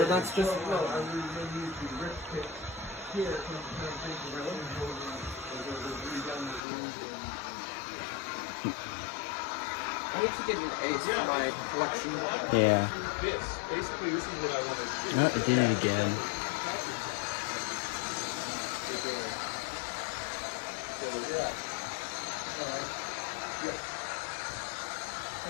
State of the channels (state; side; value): drops out; right; at 6.6 s